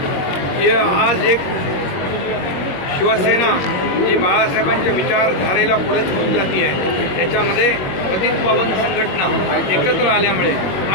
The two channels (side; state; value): right; late; 21 ms